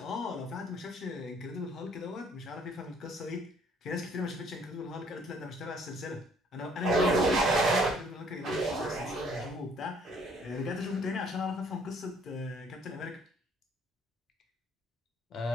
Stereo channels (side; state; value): both; normal; correlation 0.61